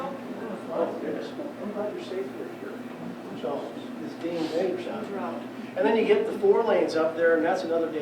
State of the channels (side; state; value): both; identical; correlation 1.00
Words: Oh, goodness. I'm glad you're safe here. So it's being dangerous out there. And then you get the 4 lanes up there, and that's another